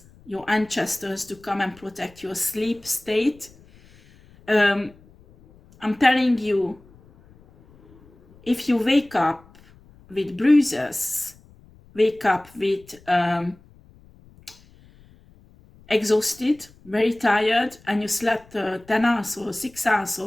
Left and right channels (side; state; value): left; noise; rumble, 26 dB below the sound